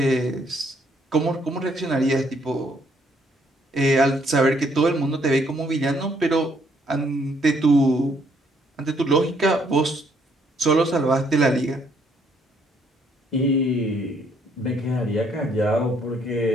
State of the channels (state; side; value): normal; both; correlation 0.68